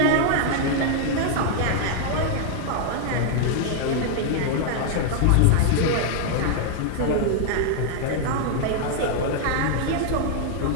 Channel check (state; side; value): different; both; correlation 0.00